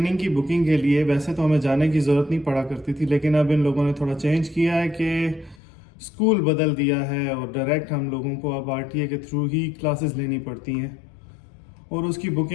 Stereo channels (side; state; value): right; drops out; at 5.6 s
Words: की बुकिंग के लिए। वैसे तो हमें जाने की ज़रूरत नहीं पड़ा करती थी, लेकिन अब इन लोगों ने थोड़ा चेंज किया है कि स्कूल बदल दिया है और डायरेक्ट हम लोगों को अब आरटीए के थ्रू ही क्लासेस लेनी पड़ती हैं। और उसकी